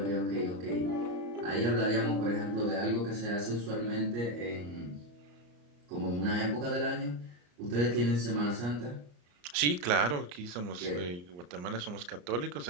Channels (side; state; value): left; late; 34 ms